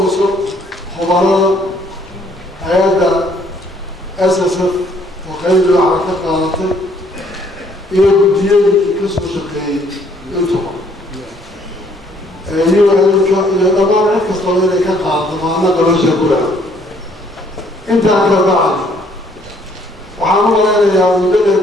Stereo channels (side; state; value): both; normal; correlation 0.64